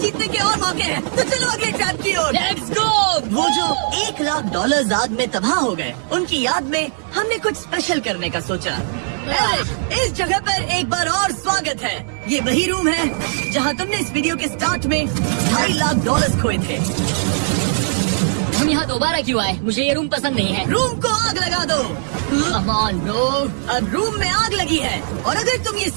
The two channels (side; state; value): left; silent; digital silence